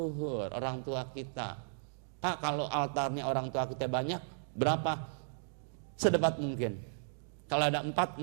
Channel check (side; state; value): left; silent; digital silence